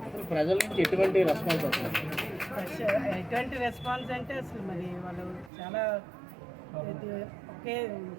ప్రజల నుంచి ఎటువంటి రెస్పాన్స్ వస్తుంది? ఎటువంటి రెస్పాన్స్ అంటే అసలు మరి వాళ్ళు చాలా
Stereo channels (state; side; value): drops out; left; at 5.5 s